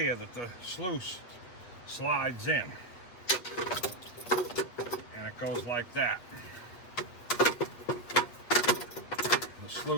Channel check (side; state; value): right; late; 8.4 ms